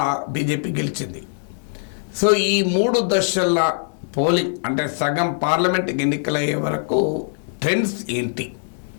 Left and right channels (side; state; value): right; silent; digital silence